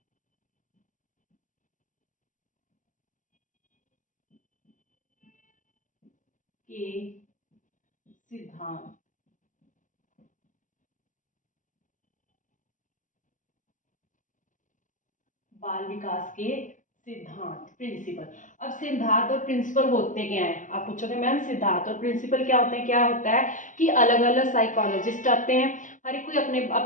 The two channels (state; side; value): late; right; 0.37 ms